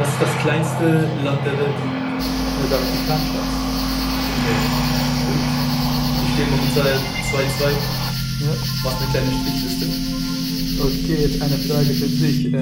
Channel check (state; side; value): identical; both; correlation 1.00